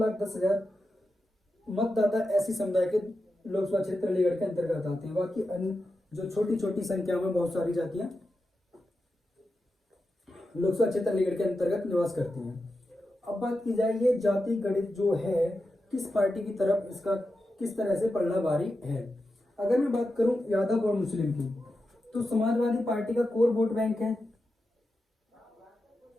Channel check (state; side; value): normal; both; correlation 0.90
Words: मतदाता एससी समुदाय के लोकसभा क्षेत्र अलीगढ़ के अंतर्गत आते हैं। बाकी अन्य जो छोटी छोटी संख्या में बहुत सारी जातियां लोकसभा क्षेत्र अलीगढ़ के अंतर्गत निवास करती हैं। अब बात की जाए ये जाति गणित जो है किस पार्टी की तरफ इसका किस तरह से पलड़ा भारी है। अगर मैं बात करूं यादव और मुस्लिम की, तो समाजवादी पार्टी का कोर वोट बैंक है।